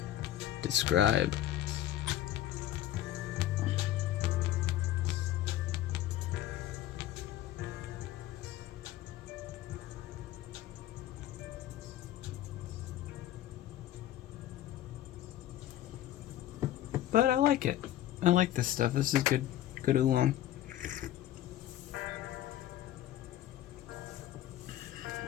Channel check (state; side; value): quieter; right; 13.1 dB